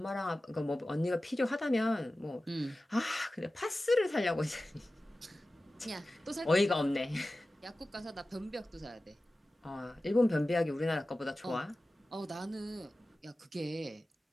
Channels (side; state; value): both; normal; correlation 0.95